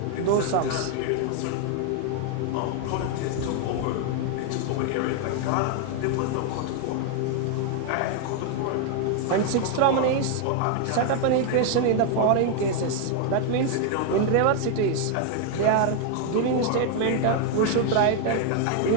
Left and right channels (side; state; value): both; different; correlation 0.00